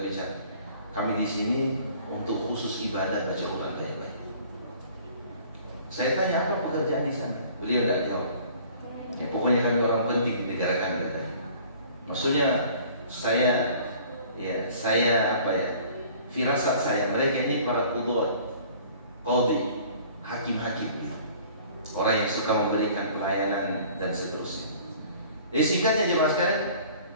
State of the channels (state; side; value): inverted; both; correlation -0.51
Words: bicara. Kami di sini untuk khusus ibadah baca Quran baik-baik. Saya tanya apa pekerjaan di sana? Beliau tidak jawab. Ya, pokoknya kami orang penting di negara kami katanya. Maksudnya firasat saya, mereka ini para qudwat, qadhi, hakim-hakim, orang yang suka memberikan pelayanan dan seterusnya. Jadi singkatnya jemaah sekalian,